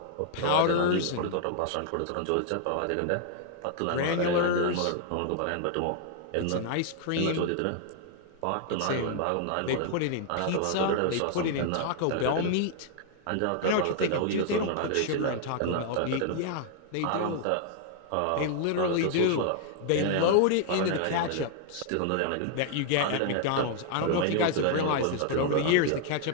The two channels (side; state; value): both; different; correlation -0.01